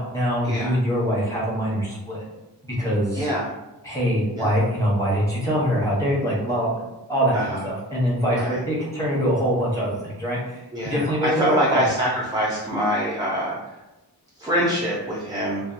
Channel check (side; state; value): both; normal; correlation 0.41